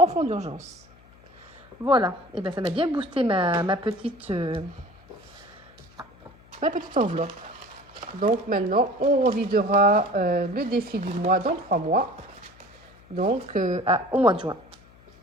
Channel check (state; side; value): noise; left; hum, 27 dB below the sound